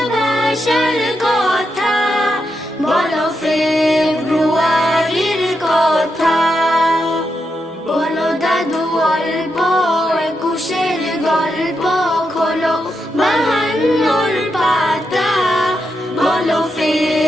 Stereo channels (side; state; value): both; normal; correlation 0.84